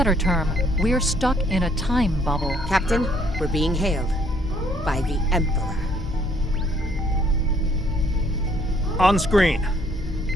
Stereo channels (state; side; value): normal; both; correlation 0.64